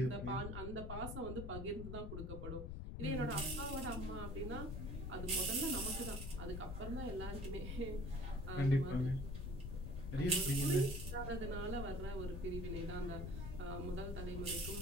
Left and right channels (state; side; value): noise; left; rumble, 5 dB below the sound